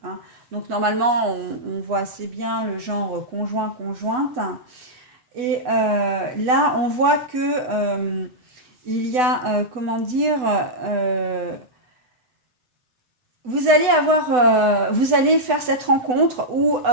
hein. Donc normalement, on voit assez bien le genre conjoint-conjointe. Et là, on voit que il y a, comment dire, vous allez faire cette rencontre ou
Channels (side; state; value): left; late; 8.1 ms